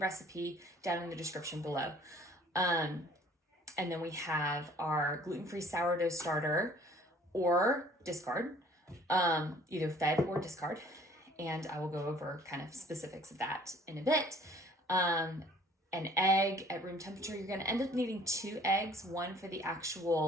down in the description below. And then we have our gluten-free sourdough starter or discard, either fed or discard, and I will go over kind of specifics of that in a bit. An egg at room temperature. You're going to end up needing 2 eggs, one for the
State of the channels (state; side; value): normal; both; correlation 0.54